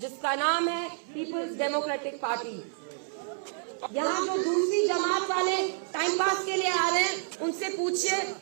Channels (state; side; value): silent; left; 59 dB below the other